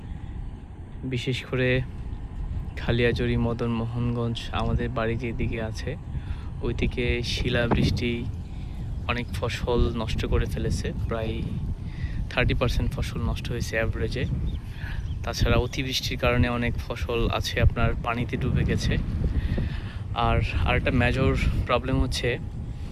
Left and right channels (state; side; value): identical; both; correlation 1.00